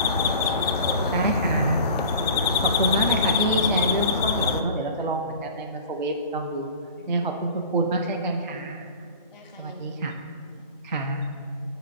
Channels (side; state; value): both; inverted; correlation -0.40